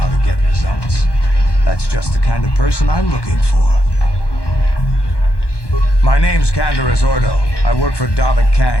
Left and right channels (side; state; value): right; late; 1.1 ms